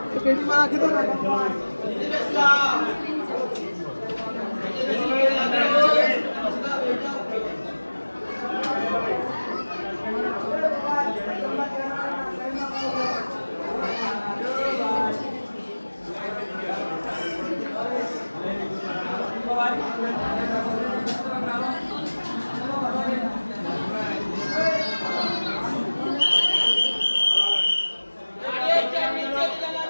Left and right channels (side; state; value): both; inverted; correlation -1.00